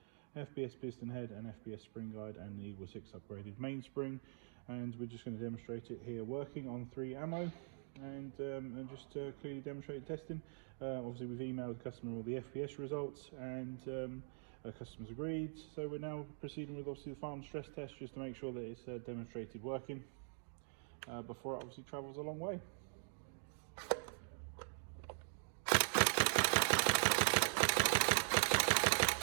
FPS piston head and FPS spring guide, and the EagleSix upgraded mainspring. And we're just going to demonstrate it here working on 3 ammo and just clearly demonstrate testing. Obviously we've emailed the customer all the FPS results, and customers agreed, so we're now proceeding with obviously the farm stress test just to make sure that it's demonstrated working before it obviously travels a long way.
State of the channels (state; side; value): silent; left; digital silence